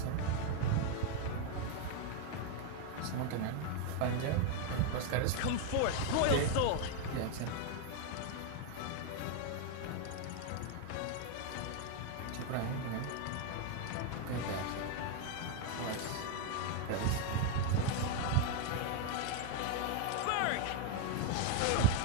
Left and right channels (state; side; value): different; both; correlation 0.01